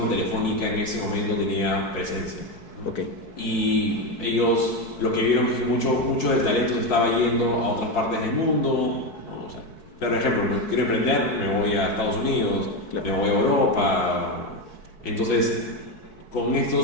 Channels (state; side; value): late; right; 4.7 ms